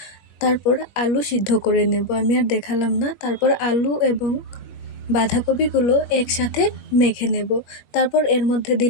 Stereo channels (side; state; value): right; late; 21 ms